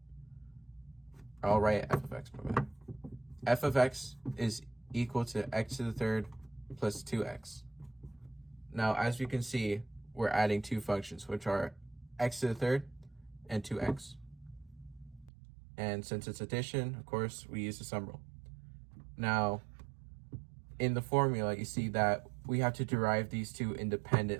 I'll write f of x. F of x is equal to x to the third plus 2x. Now, as you can see, we're adding 2 functions, which are x to the third and 2x. And since it's addition, of course, we use the sum rule. Now, in the formula, you see that we have to derive these 2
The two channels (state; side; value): drops out; left; at 15.3 s